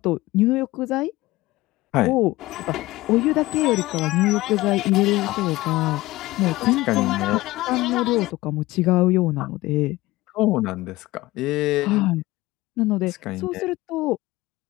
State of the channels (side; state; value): right; quieter; 19.0 dB